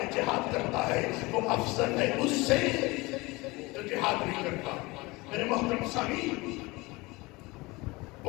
جہاد کرتا ہے وہ افضل ہے اس سے جو جہاد نہیں کرتا۔ میرے محترم سامعین،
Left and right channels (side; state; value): right; quieter; 23.3 dB